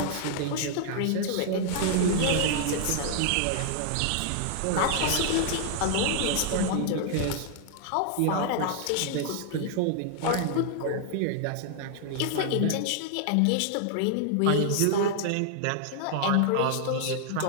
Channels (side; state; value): both; different; correlation 0.00